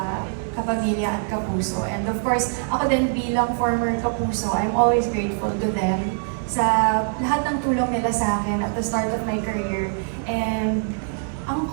Kapamilya at Kapuso. And of course, ako din bilang former Kapuso, I'm always grateful to them sa lahat ng tulong nila sa akin at the start of my career. And ang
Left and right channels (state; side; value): silent; left; 62 dB below the other